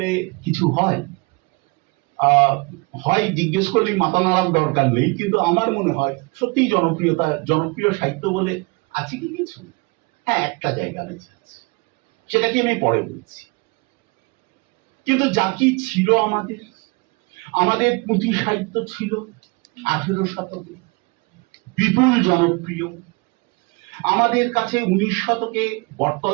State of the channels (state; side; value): quieter; left; 28.1 dB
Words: কিছু হয়, হয় জিজ্ঞেস করলেই মাথা নাড়ার দরকার নেই, কিন্তু আমার মনে হয় সত্যিই জনপ্রিয় সাহিত্য বলে আছে কি কিছু? হ্যাঁ, একটা জায়গা বেঁচে আছে, সেটাকে আমি পরে বলছি। কিন্তু যা কি ছিল আমাদের পুঁথি সাহিত্য ছিল 18 শতকে, বিপুল জনপ্রিয়। আমাদের কাছে 19 শতকে